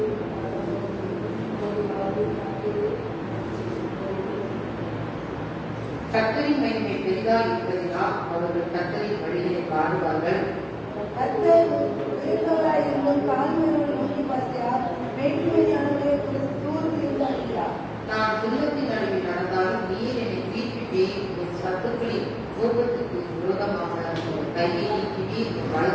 கர்த்தரின் மகிமை பெரிதாக இருப்பதினால் அவர்கள் கர்த்தரின் வழியை பாடுவார்கள். கர்த்தர் பெரியவராயிருந்தும் தாழ்மையோடு நோக்கி பார்க்கிறார். வேற்றுமையானவர்களை தூர்ந்து இருந்தார். நான் துன்பத்தின் நடுவில் நடந்தாலும் நீர் என்னை தீர்ப்பிட்டேன். என் சத்துக்களின் கோபத்துக்கு விரோதமாக கையை நீக்கி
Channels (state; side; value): identical; both; correlation 1.00